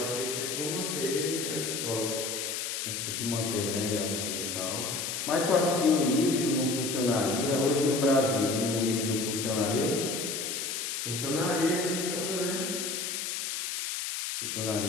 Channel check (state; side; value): noise; left; hiss, 3 dB below the sound